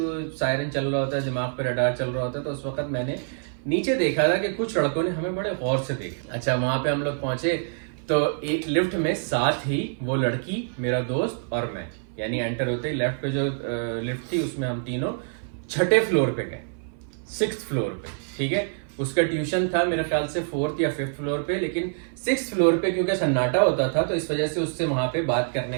सायरन चल रहा होता है, दिमाग पे रडार चल रहा होता है, तो उस वक्त मैंने नीचे देखा था कि कुछ लड़कों ने हमें बड़े गौर से देखा। अच्छा वहां पे हम लोग पहुंचे तो एक लिफ्ट में साथ ही वो लड़की, मेरा दोस्त और मैं, यानी एंटर होते ही लेफ्ट पे जो लिफ्ट थी उसमें हम तीनों छठे फ्लोर पे गए, 6th फ्लोर पे, ठीक है। उसका ट्यूशन था मेरे ख्याल से 4th या 5th फ्लोर पे, लेकिन 6th फ्लोर पे क्योंकि सन्नाटा होता था तो इस वजह से उससे वहां पे बात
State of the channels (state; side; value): silent; left; 58 dB below the other